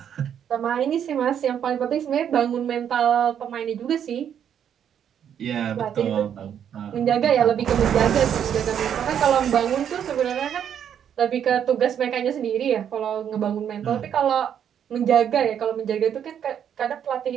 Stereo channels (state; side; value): quieter; left; 8.9 dB